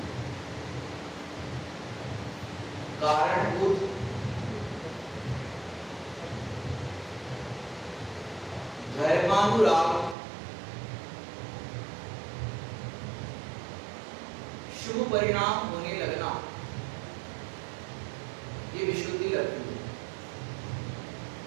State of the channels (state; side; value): drops out; left; at 10.2 s